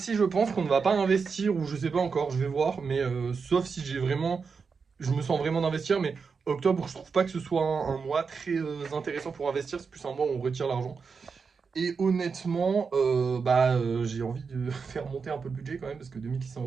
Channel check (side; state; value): left; quieter; 5.3 dB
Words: je pense qu'on ne va pas investir, ou je sais pas encore, je vais voir, mais sauf si je me sens vraiment d'investir, mais octobre, je trouve pas que ce soit un mois très intéressant pour investir, c'est plus un mois où on retire l'argent. Et honnêtement, j'ai envie de faire monter un peu le budget quand même, parce que 2600